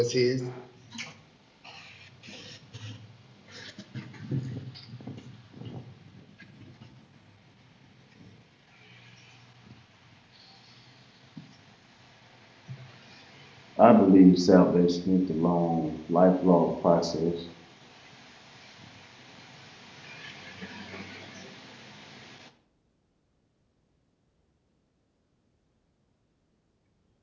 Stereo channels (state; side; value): identical; both; correlation 1.00